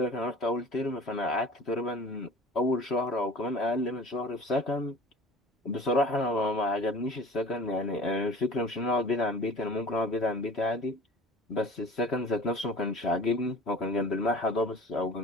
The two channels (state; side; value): normal; both; correlation 0.42